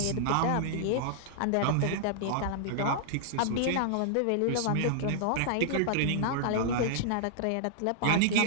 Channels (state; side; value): different; both; correlation -0.01